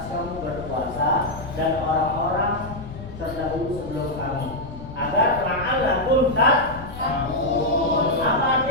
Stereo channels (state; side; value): noise; left; rumble, 13 dB below the sound